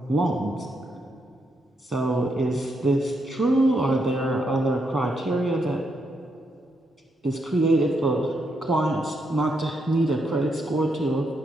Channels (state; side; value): normal; both; correlation 0.79